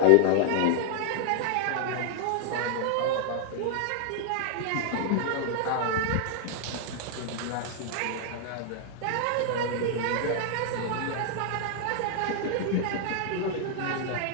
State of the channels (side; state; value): both; different; correlation -0.01